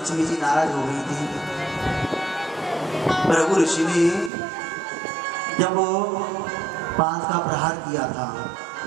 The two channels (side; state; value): left; drops out; at 4.3 s